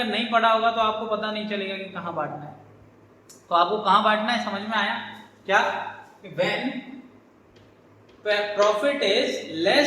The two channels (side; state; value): both; identical; correlation 1.00